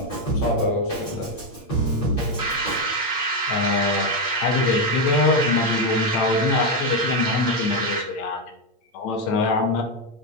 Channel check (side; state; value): right; late; 8.5 ms